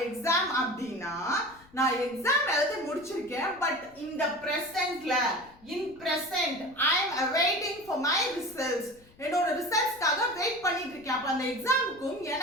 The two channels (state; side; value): noise; left; rumble, 26 dB below the sound